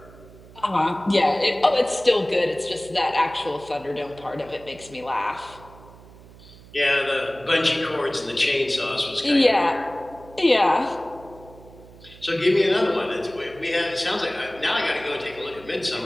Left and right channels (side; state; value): right; noise; hum, 21 dB below the sound